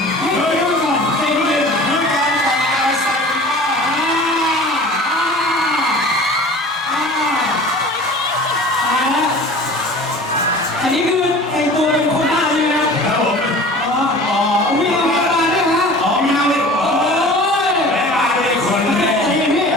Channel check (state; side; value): normal; both; correlation 0.42